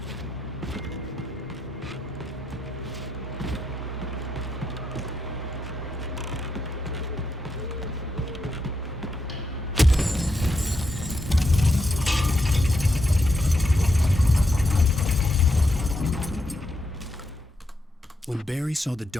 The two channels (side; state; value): both; normal; correlation 0.82